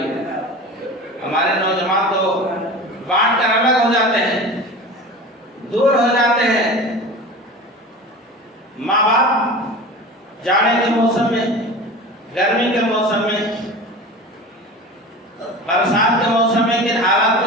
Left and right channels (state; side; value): normal; both; correlation 0.34